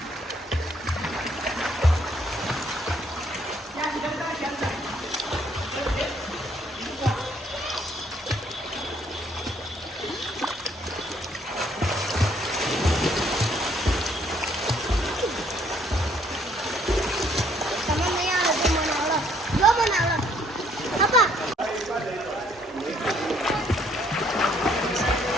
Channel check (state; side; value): normal; both; correlation 0.66